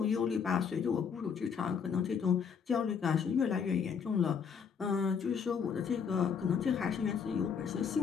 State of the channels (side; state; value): right; quieter; 6.6 dB